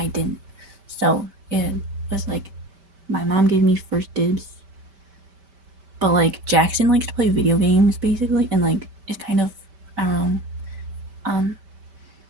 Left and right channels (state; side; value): late; left; 5.1 ms